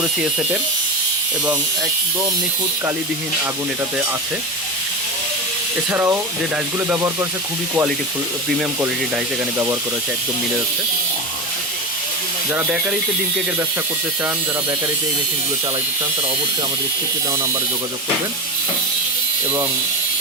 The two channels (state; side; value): normal; both; correlation 0.21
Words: এসেটের, এবং একদম নিখুঁত কালিবিহীন আগুন এটাতে আছে। এছাড়াও যে ডাইসগুলো ব্যবহার করেছে খুবই কোয়ালিটিফুল, প্রিমিয়াম কোয়ালিটির ডাইস এখানে ব্যবহার করেছে, একদম মিলে যাচ্ছে। যারা বেকারিতে ডিম কেকের ব্যবসা করতে চান, যারা বেকারিতে এই মেশিনগুলো চালাইতে চান, তারা অবশ্যই আমাদের স্ক্রিপ্টে দেওয়া নাম্বারে যোগাযোগ করবেন এবং